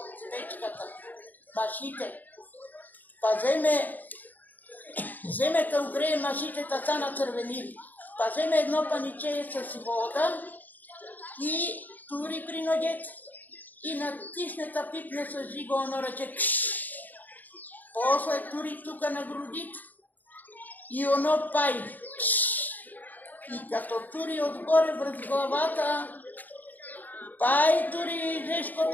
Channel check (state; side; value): late; right; 0.085 ms